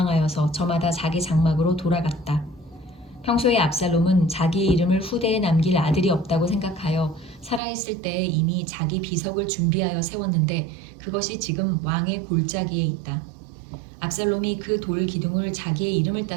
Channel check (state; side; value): drops out; left; at 7.6 s